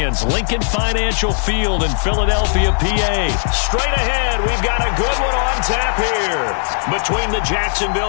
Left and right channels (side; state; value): right; silent; 68 dB below the other